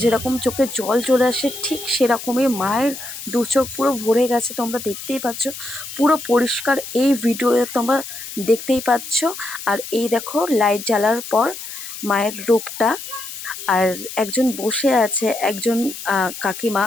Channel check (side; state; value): left; noise; hiss, 10 dB below the sound